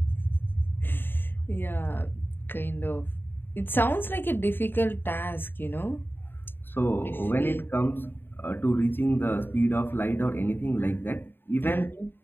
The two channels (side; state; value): right; late; 0.099 ms